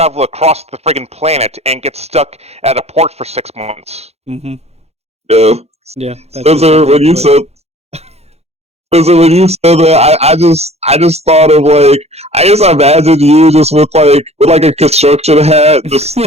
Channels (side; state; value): left; late; 0.31 ms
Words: across the friggin' planet and get stuck at a port for 6 months. Mm-hmm. Yeah. Yeah. Spencer, when you said that, I just thought of like I just imagined you just with like a construction hat, just